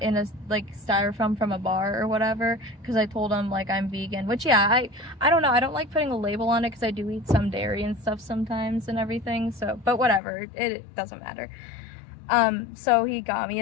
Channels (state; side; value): drops out; right; at 10.2 s